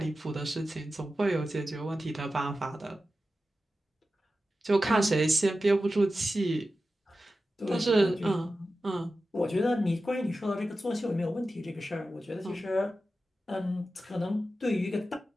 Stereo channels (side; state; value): both; normal; correlation 0.93